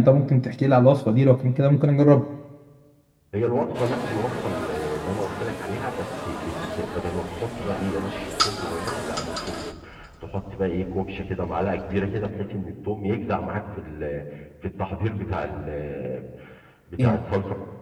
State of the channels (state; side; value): identical; both; correlation 1.00